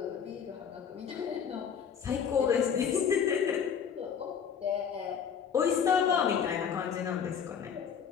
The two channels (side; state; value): right; quieter; 7.4 dB